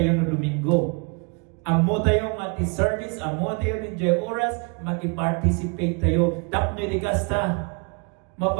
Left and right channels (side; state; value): left; quieter; 34.1 dB